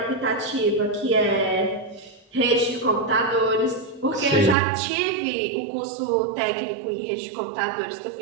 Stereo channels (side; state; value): left; drops out; at 4.5 s